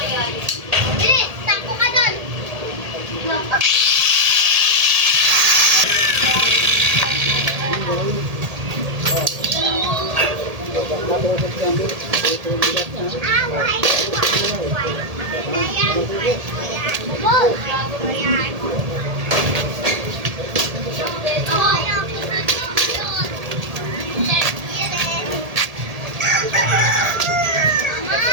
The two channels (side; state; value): left; late; 1.8 ms